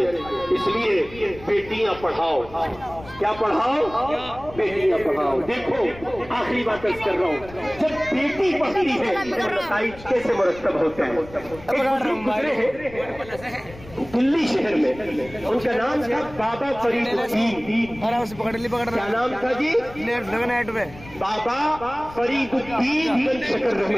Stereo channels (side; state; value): left; noise; rumble, 18 dB below the sound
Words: اس لیے بیٹیاں پڑھاؤ۔ کیا پڑھاؤ؟ بیٹیاں پڑھاؤ۔ دیکھو آخری بات کر رہا ہوں، جب بیٹی پڑھتی ہے تو نتائج کیسے مرتب ہوتے ہیں۔ گزرے ہیں دلی شہر میں، ان کا نام تھا بابا فرید الدین۔ کیا نام تھا جی؟ بابا فرید الدین بن شکر